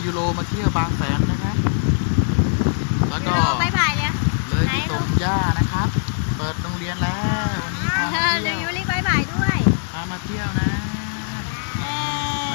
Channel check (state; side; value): silent; right; digital silence